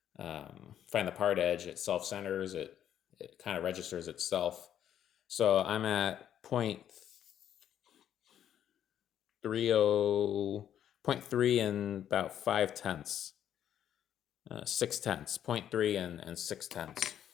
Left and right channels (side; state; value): right; quieter; 10.2 dB